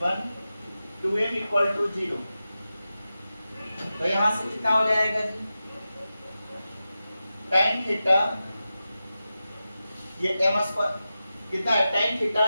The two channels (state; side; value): inverted; both; correlation -0.93